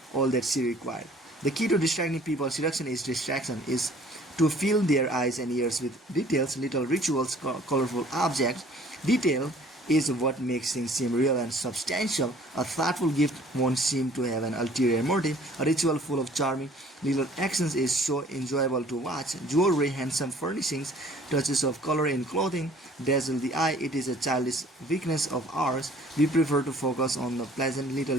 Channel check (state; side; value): normal; both; correlation 0.53